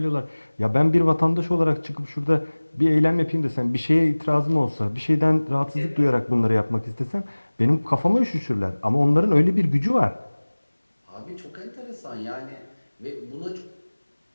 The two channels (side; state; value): both; inverted; correlation -1.00